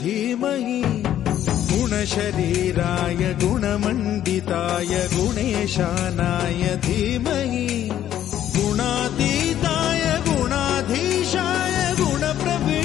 धीमहि गुणशरीराय गुणमण्डिताय गुणेशानाय धीमहि गुणातीताय गुणाधीशाय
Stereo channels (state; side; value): quieter; right; 11.4 dB